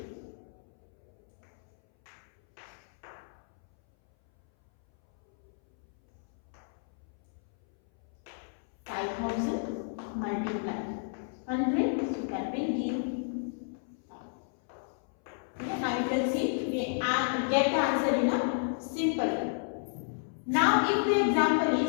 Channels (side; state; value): right; silent; 57 dB below the other